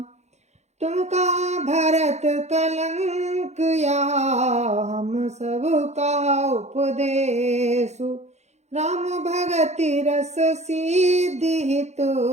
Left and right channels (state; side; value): late; left; 0.33 ms